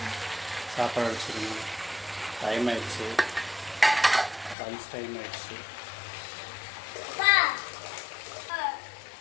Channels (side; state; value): right; drops out; at 4.5 s